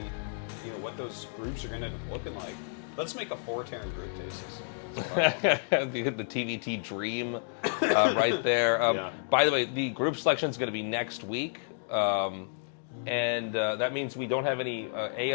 you know, what those groups are going to end up looking like. Let's make a 4 Terran group, Tastosis. That's what I want. the TVT dream right there. Yeah. By the way, the group selection is going to be next week. And that means we don't have any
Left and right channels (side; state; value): right; silent; digital silence